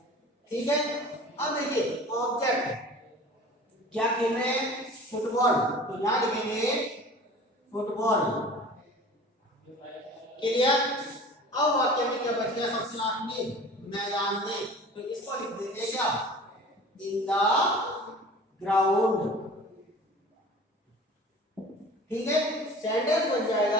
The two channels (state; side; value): normal; both; correlation 0.42